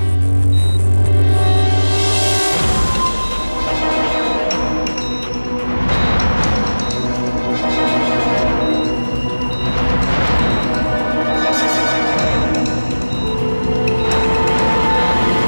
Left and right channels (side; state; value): both; inverted; correlation -1.00